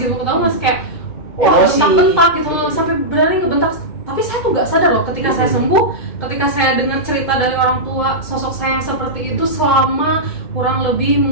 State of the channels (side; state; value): right; late; 2.2 ms